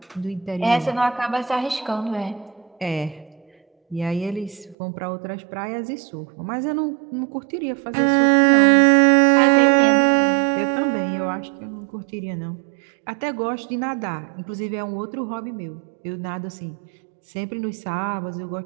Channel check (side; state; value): left; drops out; at 4.8 s